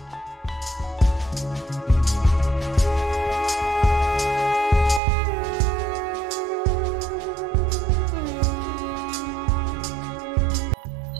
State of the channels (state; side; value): drops out; left; at 5.0 s